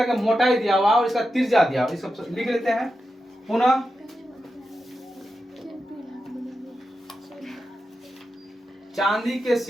का मोटाई दिया हुआ और इसका त्रिज्या दिया हुआ, इसको लिख लेते हैं पुनः। चांदी के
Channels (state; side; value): normal; both; correlation 0.89